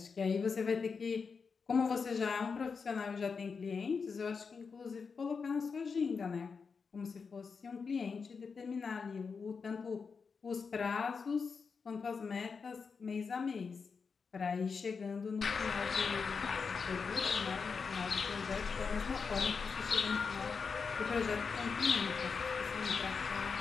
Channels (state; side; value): quieter; right; 5.3 dB